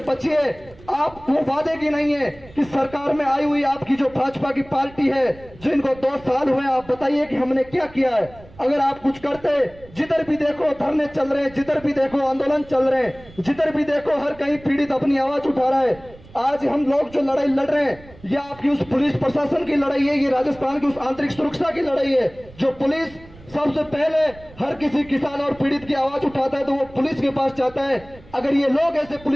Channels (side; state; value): right; noise; rumble, 22 dB below the sound